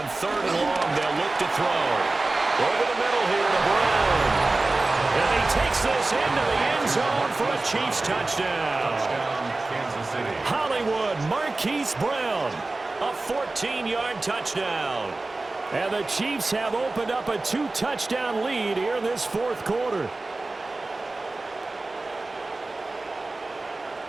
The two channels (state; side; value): quieter; left; 3.2 dB